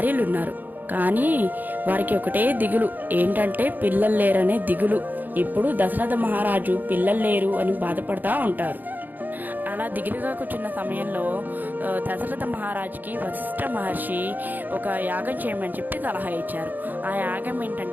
కానీ వారికి ఒకటే దిగులు, ఏంటంటే పిల్లలు లేరనే దిగులు. ఇప్పుడు దశరథ మహారాజు పిల్లలు లేరు అని బాధపడతా ఉంటారు. అలా దిగులుగా కూర్చున్న సమయంలో దశరథ మహారాజుకి వశిష్ఠ మహర్షి ఒక యాగం చేయమని చెప్పి సలహా ఇచ్చారు. ఆ యాగం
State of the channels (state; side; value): late; left; 0.086 ms